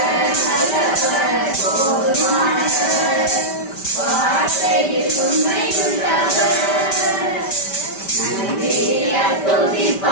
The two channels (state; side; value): late; right; 5.1 ms